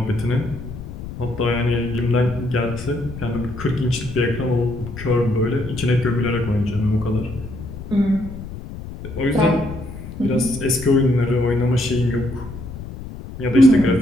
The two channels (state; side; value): noise; left; rumble, 11 dB below the sound